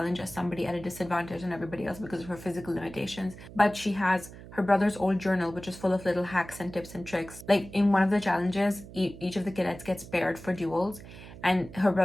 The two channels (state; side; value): noise; right; hum, 16 dB below the sound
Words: as somebody at a disadvantage on everybody else because of her physical limitations. But she has her brother's old journal, which is full of little hacks and tips and tricks. Like, in one of the challenges, each of the cadets gets paired for duels, and her